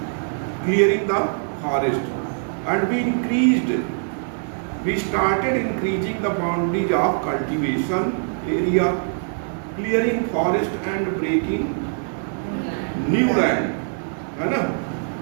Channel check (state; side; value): silent; left; 64 dB below the other